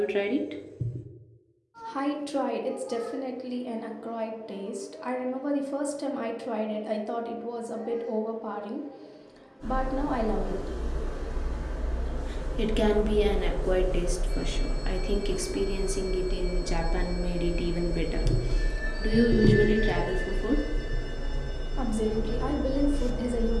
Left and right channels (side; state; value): both; identical; correlation 1.00